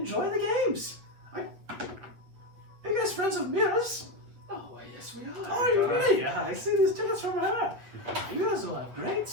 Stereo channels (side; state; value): left; late; 8.3 ms